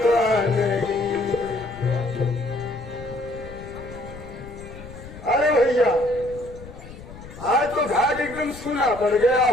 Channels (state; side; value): noise; left; rumble, 15 dB below the sound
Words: अरे भैया आज तो घाट एकदम सूना पड़ गया